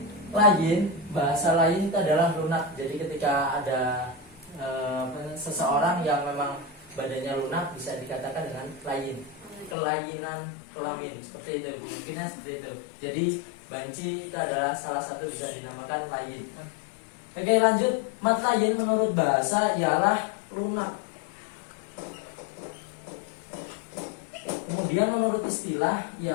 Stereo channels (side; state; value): right; drops out; at 9.8 s